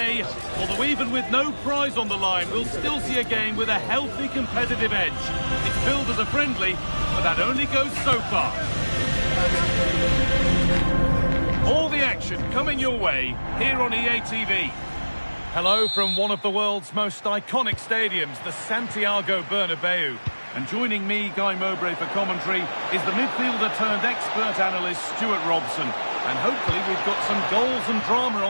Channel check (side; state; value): both; inverted; correlation -1.00